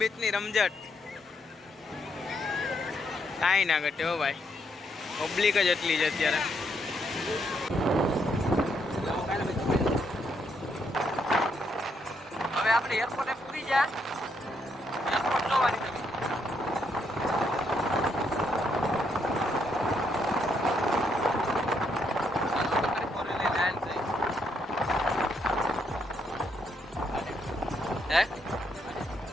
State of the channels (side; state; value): both; normal; correlation 0.75